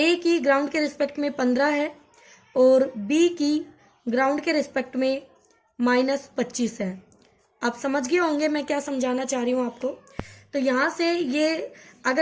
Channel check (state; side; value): identical; both; correlation 1.00